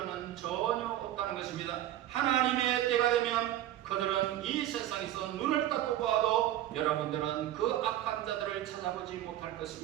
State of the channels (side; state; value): left; quieter; 13.0 dB